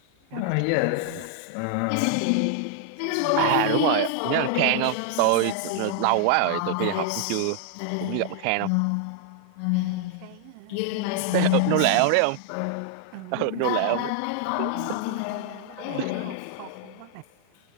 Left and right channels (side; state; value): both; different; correlation 0.00